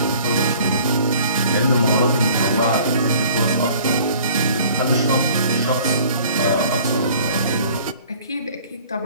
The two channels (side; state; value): both; inverted; correlation -0.52